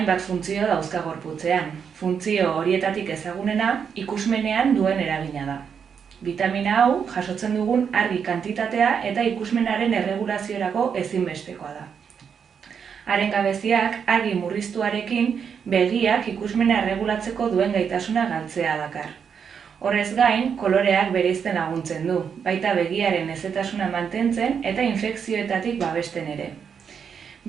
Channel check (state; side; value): quieter; left; 7.0 dB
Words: funtzio dauzka gorputzean. Funtzio horietatik ezagunena ikusmenean duen eragina da. Vitamina hau jasotzen dugun argi kantitatea eta ikusmenaren erregulaziorako ezinbestekoa da. Haren gabeziak argi murriztuarekin begiak ikusmena erregulatzeko duen gaitasuna galtzea dakar. Horrez gain, koloreak bereizten laguntzen du, baita begiaren hezetasuna mantentzen eta infekzioetatik babesten ere.